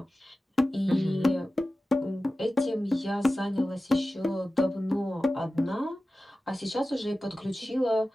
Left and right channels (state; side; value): normal; both; correlation 0.95